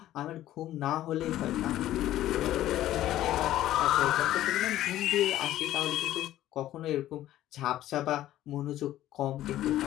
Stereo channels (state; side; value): quieter; right; 13.6 dB